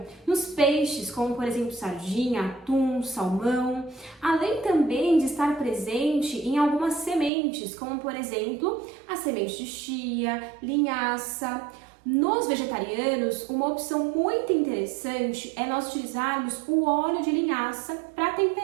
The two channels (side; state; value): left; drops out; at 7.3 s